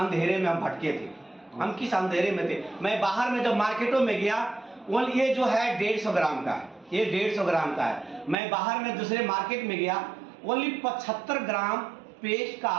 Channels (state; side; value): drops out; left; at 8.3 s